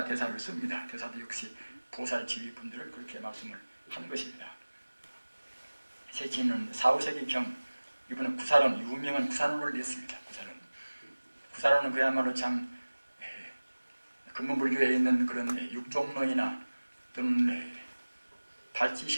대사를 씁니다. 대사도 역시 보살 지휘분들을 그렇게 말씀을 하는 것입니다. 세친은 4, 5세기경 이번에 구사론, 유명한 구사론을 냈습니다. 구사론은 그야말로 참 근본불교에 있는 그런 육종론이나 또는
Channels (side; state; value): both; inverted; correlation -1.00